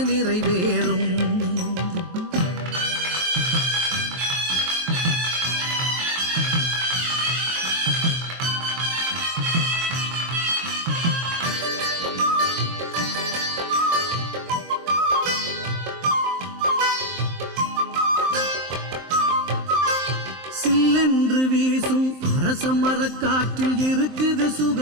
நிறைவேறும் சில்லென்று வீசும் அரச மரக்காற்றில் இருக்குது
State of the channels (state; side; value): late; left; 23 ms